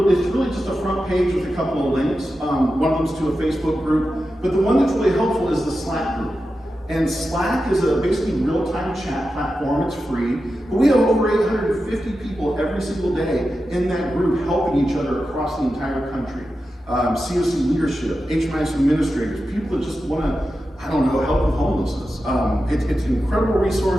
just a front page with a couple of links. One of them's to a Facebook group, but the one that's really helpful is the Slack group. And Slack is a basically real-time chat platform. It's free, but we have over 850 people every single day in that group helping each other across the entire country. COC leadership, HMIS administrators, people that just want to, help with homelessness. It's an incredible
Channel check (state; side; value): normal; both; correlation 0.91